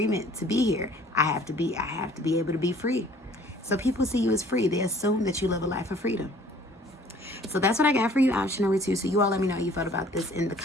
to be here. I have to be able to be free. So people see you as free. They assume that you live a life of freedom. So that's what I got for you, option number 2. So you all let me know how you felt about this in the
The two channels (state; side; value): normal; both; correlation 0.54